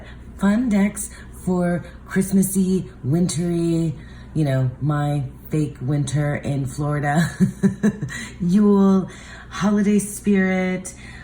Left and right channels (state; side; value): identical; both; correlation 1.00